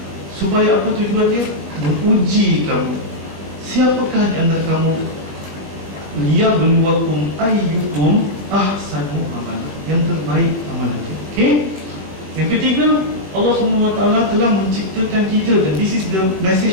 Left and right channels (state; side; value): late; left; 21 ms